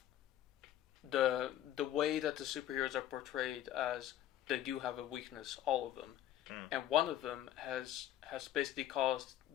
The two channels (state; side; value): quieter; right; 12.2 dB